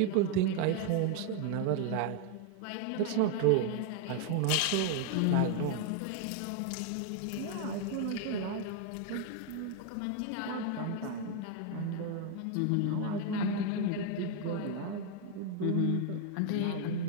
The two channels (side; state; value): both; different; correlation 0.01